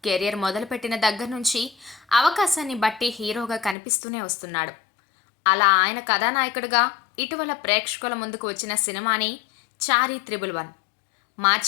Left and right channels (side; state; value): right; drops out; at 3.8 s